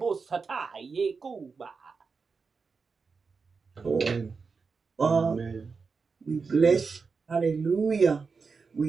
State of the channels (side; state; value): left; quieter; 4.9 dB